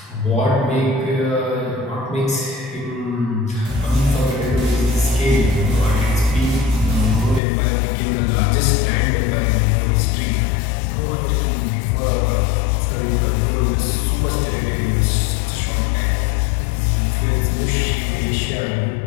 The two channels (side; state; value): right; drops out; at 7.4 s